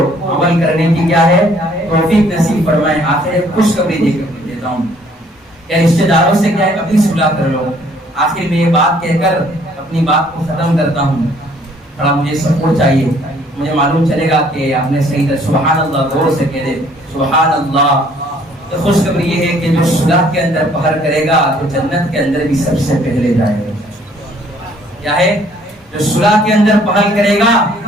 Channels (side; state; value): both; normal; correlation 0.61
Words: عمل کرنے کی کیا ہے توفیق نصیب فرمائے. آخر خوشخبری دے کر دیتا ہوں کہ رشتہ داروں سے کیا ہے اپنی صلح کر لو. آخر میں یہ بات کہہ کر اپنی بات کو ختم کرتا ہوں. تھوڑا مجھے سپورٹ چاہیے, مجھے معلوم چلے گا کہ آپ نے صحیح طرح سبحان اللہ غور سے کہہ دے سبحان اللہ. تو خوشخبری یہ ہے کہ جو صلح کے اندر پہر کرے گا تو جنت کے اندر بھی سب سے پہلے جائے گا. کیا ہے, جو صلح کے اندر پہل کرے گا